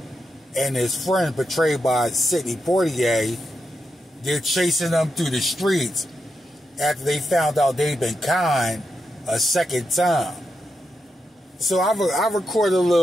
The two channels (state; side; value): normal; both; correlation 0.86